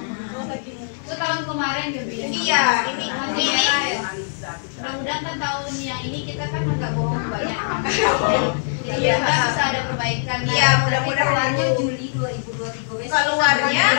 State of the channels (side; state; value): right; silent; digital silence